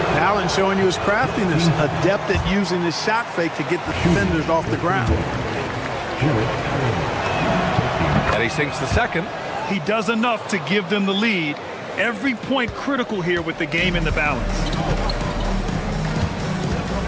Allen showing you his craftiness, adept at using his shot fake to get the defenders off the ground. And he sinks the second. He does enough to give them the lead. Every point critical here with the game in the balance.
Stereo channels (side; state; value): both; identical; correlation 1.00